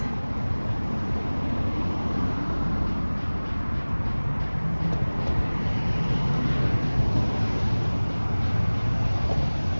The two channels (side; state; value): both; inverted; correlation -1.00